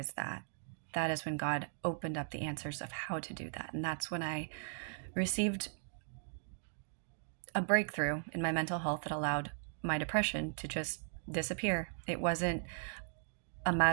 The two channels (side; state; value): left; silent; digital silence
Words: that, that is when God opened up the answers of how to do that. And that's when I received a breakthrough in my mental health that allowed my depression to just disappear. It wasn't a